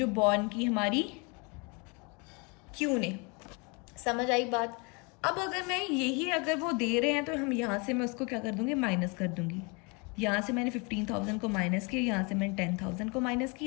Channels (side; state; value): right; quieter; 30.6 dB